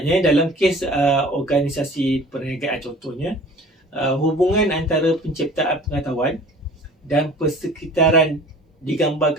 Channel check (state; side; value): normal; both; correlation 0.46